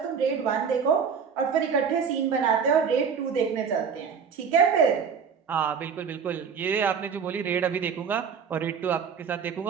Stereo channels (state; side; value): quieter; left; 6.5 dB